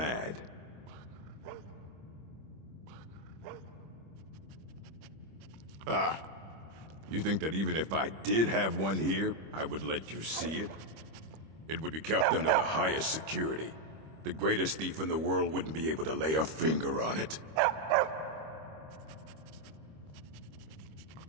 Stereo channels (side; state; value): left; late; 25 ms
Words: Ah, you think that even if I did have one here, I would let you see it? It would be kept under the highest security. The greatest thief in the world wouldn't be able to lay a finger on it.